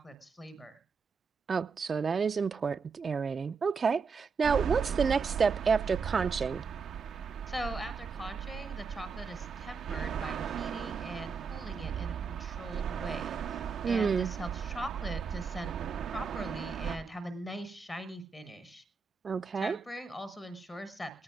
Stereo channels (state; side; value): quieter; left; 5.3 dB